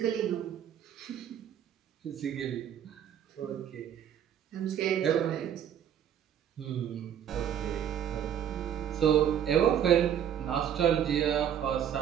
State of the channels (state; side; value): quieter; left; 9.5 dB